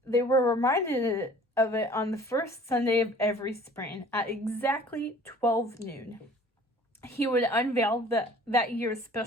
of it on the first Sunday of every spring at exactly 12 noon. He would unveil that year's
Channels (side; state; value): both; normal; correlation 0.50